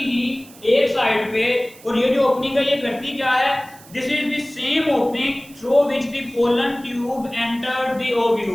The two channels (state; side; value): noise; right; hiss, 22 dB below the sound